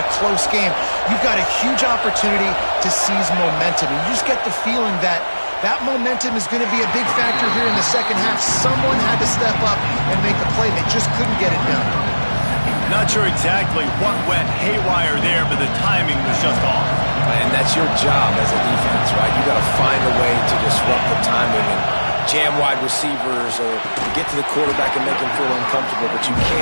a close game. You've got a huge opportunity to seize momentum. And you just get the feeling that that momentum is going to be a big factor here in the second half. Someone had to step up and make a play. They just couldn't get it done. Not sure exactly what went haywire there, but the timing was just off. And that's your job as a defense, right? You got to find a way to disrupt the timing and jam wide receivers or get to the quarterback and make him feel uncomfortable, but you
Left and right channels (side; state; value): both; inverted; correlation -1.00